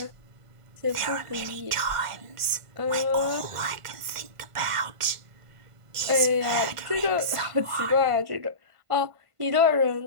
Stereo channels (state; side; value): late; left; 1.5 ms